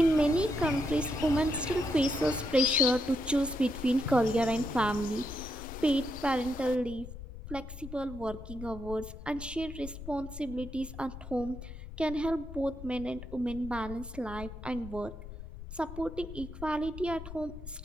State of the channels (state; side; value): noise; left; rumble, 12 dB below the sound